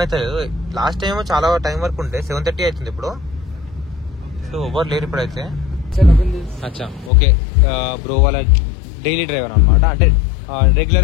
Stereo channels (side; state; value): right; drops out; at 7.1 s